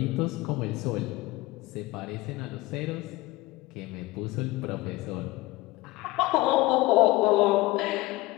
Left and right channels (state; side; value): quieter; right; 19.7 dB